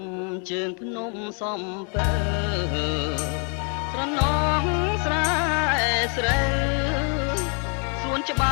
ជើងភ្នំសំពើស្រណងស្រែស្រូវសួនច្ប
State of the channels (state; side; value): quieter; right; 39.7 dB